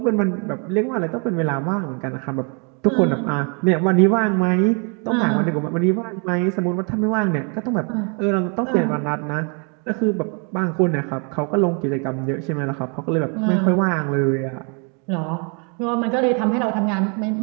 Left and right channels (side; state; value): left; quieter; 36.3 dB